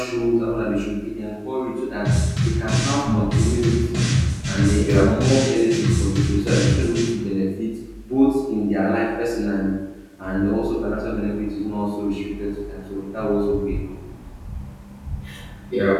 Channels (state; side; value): identical; both; correlation 1.00